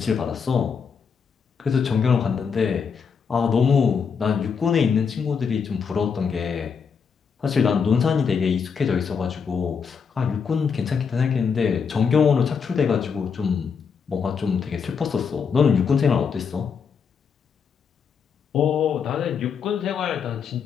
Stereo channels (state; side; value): quieter; right; 6.2 dB